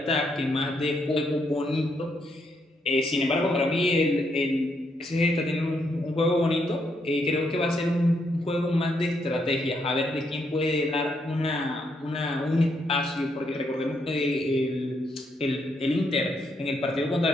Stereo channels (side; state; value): both; normal; correlation 0.76